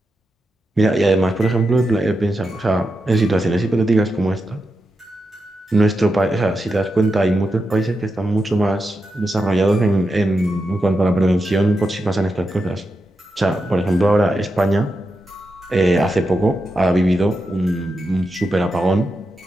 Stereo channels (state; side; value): normal; both; correlation 0.88